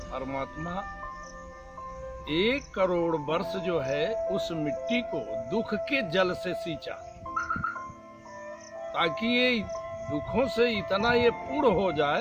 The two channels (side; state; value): both; identical; correlation 1.00